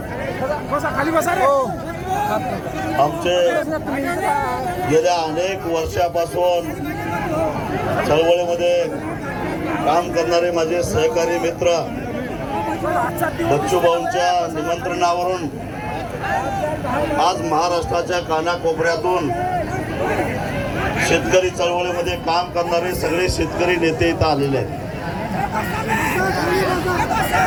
आमचे गेल्या अनेक वर्षापासून चळवळीमध्ये काम करणारे माझे सहकारी मित्र बच्चू भाऊंच्या निमंत्रणावरून आज महाराष्ट्राच्या कानाकोपऱ्यातून शेतकरी चळवळीमध्ये काम करणारे सगळे शेतकरी नेते इथं आलेले आहेत.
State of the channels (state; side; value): identical; both; correlation 1.00